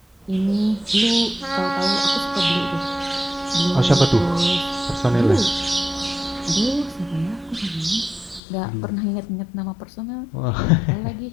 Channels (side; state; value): right; drops out; at 8.4 s